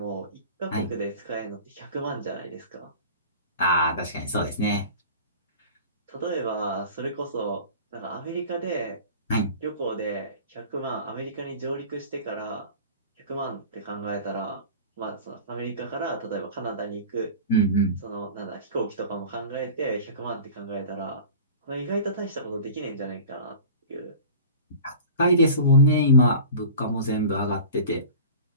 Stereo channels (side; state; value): both; inverted; correlation -0.39